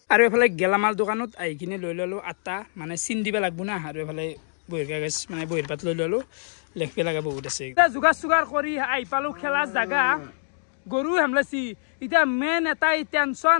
আৰু এফালে গেলামাল দোকানত আহি কিনে লৈ ল'লোঁ আটা মানে চিন দিব লাগব না আৰু এফালে বহিৰ কাগজ মানে বহিৰ পাত লৈ ল'লোঁ লেখিব লগা বহুত আছে যোগাৰ চোগাৰ কৰি আহি পালোঁ খেলাৰ জাগা গৰু হেমলাইছি এতিয়া মেইন এটাই টেনশ্যন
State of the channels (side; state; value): right; silent; digital silence